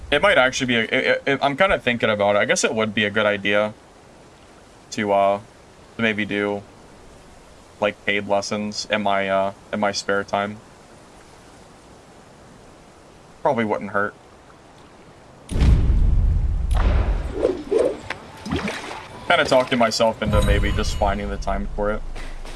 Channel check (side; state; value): both; identical; correlation 1.00